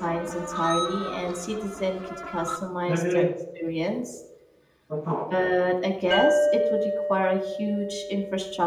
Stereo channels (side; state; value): both; identical; correlation 1.00